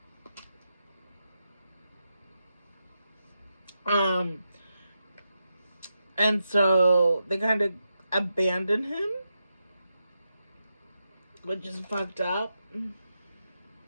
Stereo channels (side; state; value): both; inverted; correlation -0.87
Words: And so they kind of abandon him, which is fucked up.